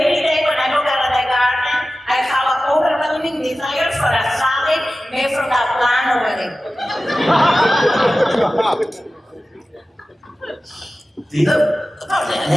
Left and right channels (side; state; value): both; normal; correlation 0.95